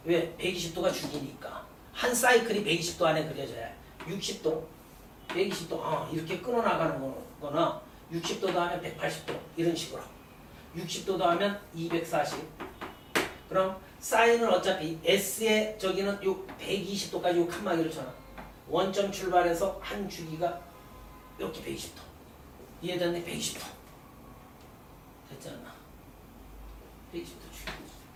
왜? 120도가 주기니까. 한 사이클이 120도 안에 그려져야 해. 60도, 120도, 이렇게 끊어나가는 거나 60도 더하면 180도 이런 식으로. 60도 더하면 240. 그럼 사인은 어차피 S의 저기는 요 120도까지 요 칸막이를 쳐놔. 원점 출발해서 한 주기가 이렇게 120도. 이해됐네? 120도. 됐지 않나? 120도 주기.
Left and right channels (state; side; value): identical; both; correlation 1.00